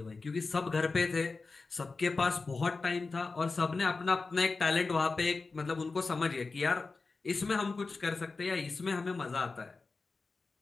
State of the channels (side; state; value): right; quieter; 4.0 dB